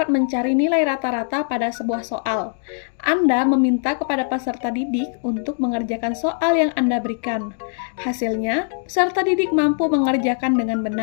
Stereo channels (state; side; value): silent; right; 65 dB below the other